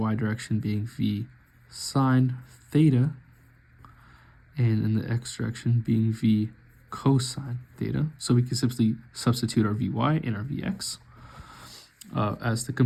direction being v sine theta, and in the x direction being v cosine theta. So we can simply substitute our vy and our vx as the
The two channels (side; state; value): both; identical; correlation 1.00